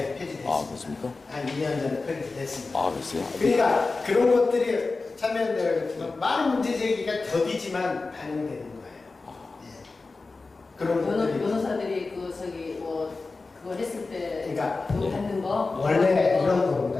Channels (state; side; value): quieter; right; 3.8 dB